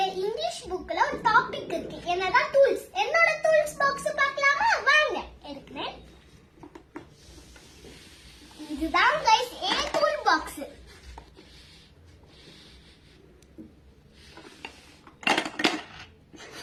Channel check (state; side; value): identical; both; correlation 1.00